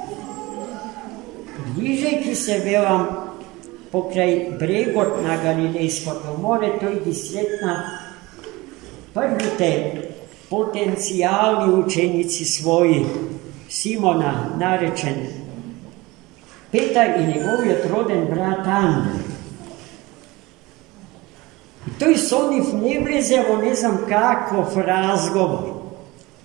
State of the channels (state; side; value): quieter; left; 21.7 dB